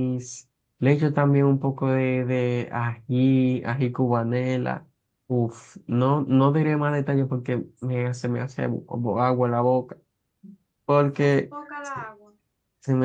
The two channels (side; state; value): both; identical; correlation 1.00